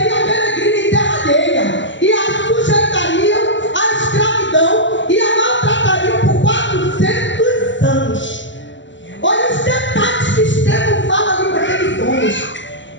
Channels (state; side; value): late; right; 0.54 ms